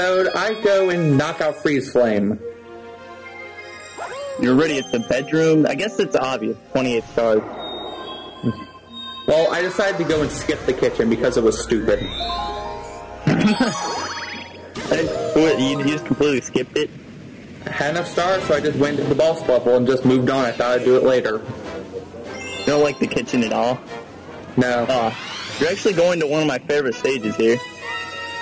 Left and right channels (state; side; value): identical; both; correlation 1.00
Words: I go and knock out Freeze Flame. You're already at the bedroom? I guess it's obvious, 28 stars. Well, I decided to go and skip the kitchen because it was stupid. What, you just completely skipped it? I had enough stars, so I just went to the boss level and just moved on. I thought I'd do it later. You don't like the kitchen at all? No. You're actually going to one of my favorite stages here.